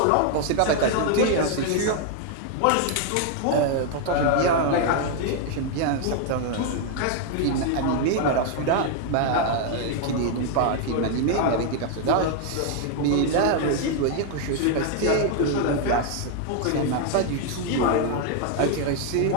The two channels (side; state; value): both; different; correlation 0.00